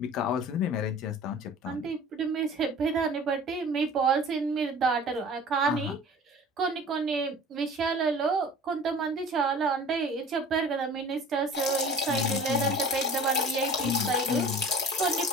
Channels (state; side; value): normal; both; correlation 0.43